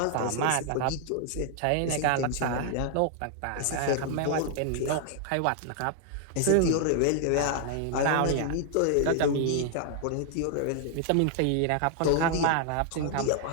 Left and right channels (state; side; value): different; both; correlation 0.00